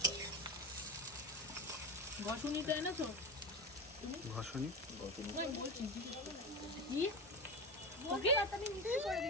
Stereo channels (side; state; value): both; normal; correlation 0.21